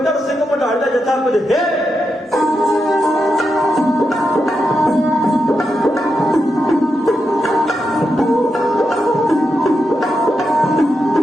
ਸਿੰਘ ਮਢਾਲ ਦਾ ਜੱਥਾ ਕੁਝ ਹੈ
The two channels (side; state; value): both; normal; correlation 0.86